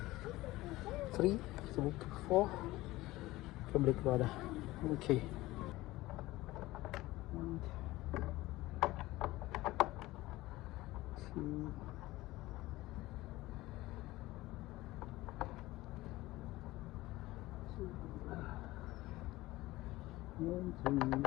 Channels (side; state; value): right; quieter; 18.3 dB